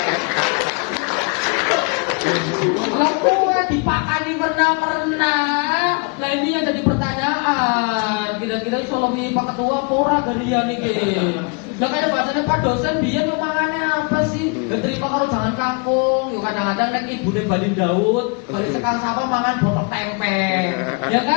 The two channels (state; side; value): quieter; right; 34.3 dB